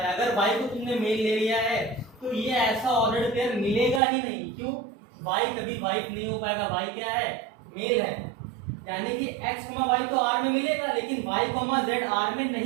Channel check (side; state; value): left; drops out; at 4.0 s